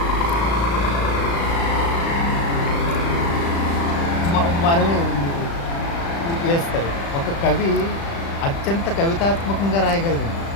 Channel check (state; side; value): late; right; 35 ms